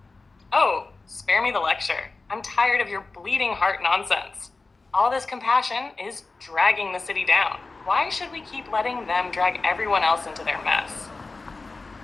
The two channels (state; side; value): quieter; right; 3.7 dB